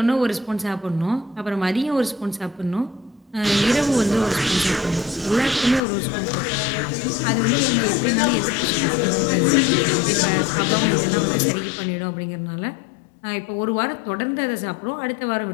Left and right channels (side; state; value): right; drops out; at 5.8 s